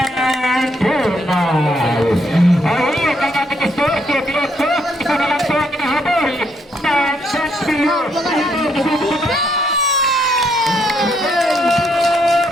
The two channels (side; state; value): both; normal; correlation 0.73